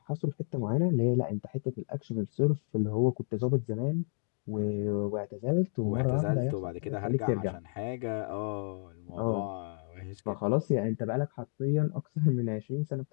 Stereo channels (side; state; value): right; silent; digital silence